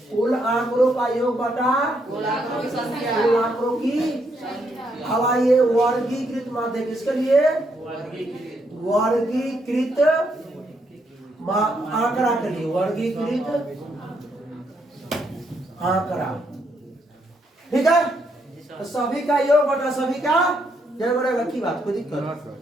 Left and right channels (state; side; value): normal; both; correlation 0.76